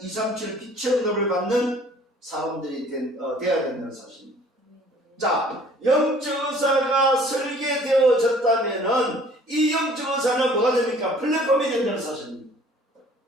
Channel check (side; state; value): both; normal; correlation 0.54